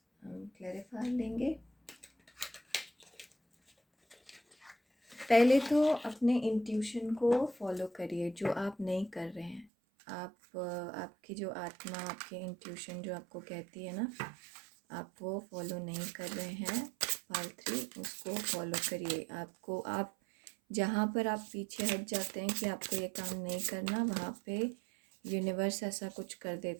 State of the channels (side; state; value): left; drops out; at 9.7 s